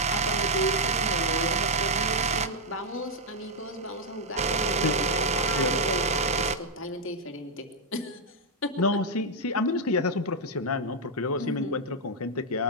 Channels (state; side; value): normal; both; correlation -0.02